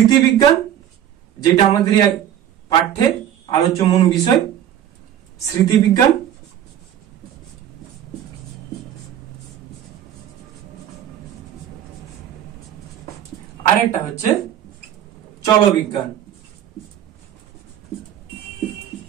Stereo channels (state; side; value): quieter; left; 10.6 dB